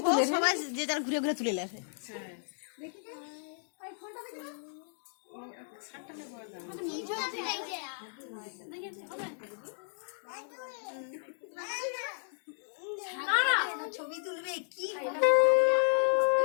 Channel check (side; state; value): right; silent; digital silence